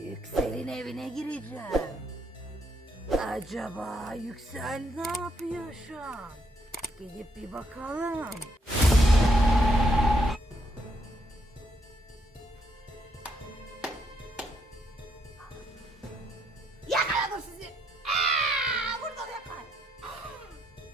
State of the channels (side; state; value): both; normal; correlation 0.75